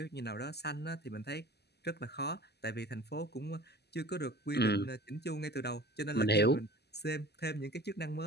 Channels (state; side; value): late; right; 0.48 ms